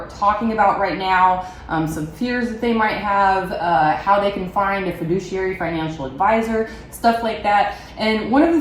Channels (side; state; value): both; identical; correlation 1.00